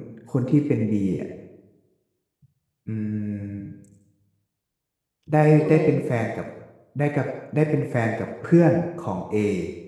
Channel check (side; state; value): both; identical; correlation 1.00